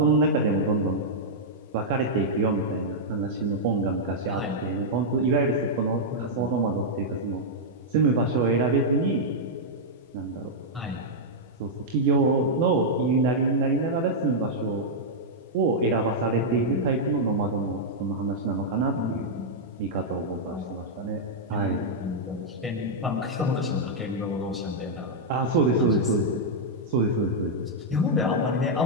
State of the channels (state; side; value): normal; both; correlation -0.06